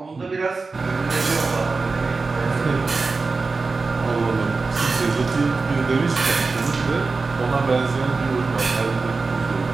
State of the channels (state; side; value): quieter; left; 4.0 dB